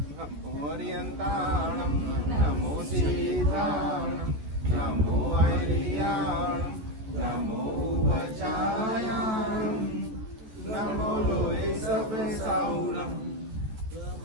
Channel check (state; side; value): late; left; 14 ms